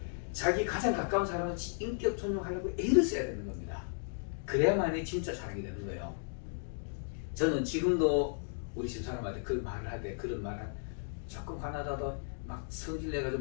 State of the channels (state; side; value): silent; right; digital silence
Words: 자기 가장 가까운 사람은 인격 존중하려고 애를 써야 되는 겁니다. 그래야만이 진짜 사랑이 되는 거예요. 저는 지금도 우리 집사람한테 그 말을 할 때 그런 말을 조금 화나다도 막 성질